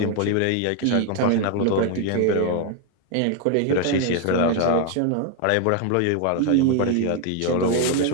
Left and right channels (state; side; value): different; both; correlation 0.00